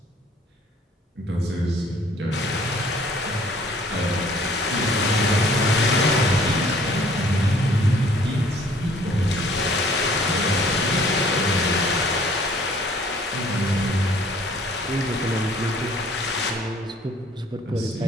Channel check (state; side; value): normal; both; correlation 0.57